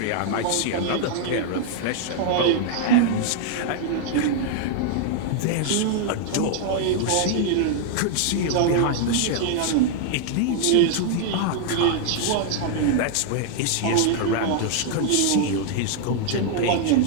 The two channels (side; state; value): both; different; correlation 0.00